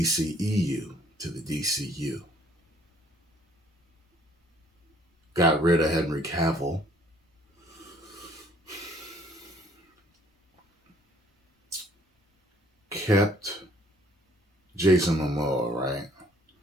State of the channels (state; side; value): normal; both; correlation 0.60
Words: to the DCU. Got rid of Henry Cavill. Kept Jason Momoa, right?